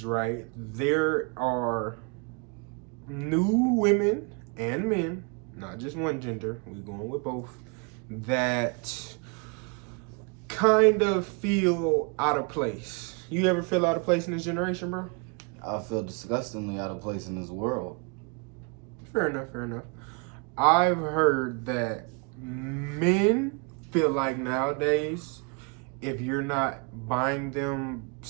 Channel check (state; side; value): quieter; left; 34.6 dB